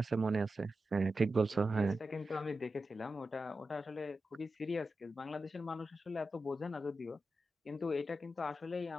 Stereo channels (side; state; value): both; normal; correlation 0.91